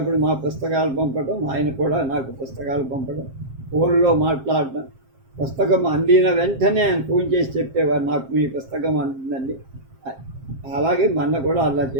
మా పుస్తకాలు పంపడం, ఆయన కూడా నాకు పుస్తకాలు పంపడం, ఫోన్లో మాట్లాడటం. పుస్తకం అందిన వెంటనే ఆయన ఫోన్ చేసి చెప్పేవారు, నాకు మీ పుస్తకం అందిందండి. అలాగే మొన్న కూడా అలా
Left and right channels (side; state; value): left; late; 7.5 ms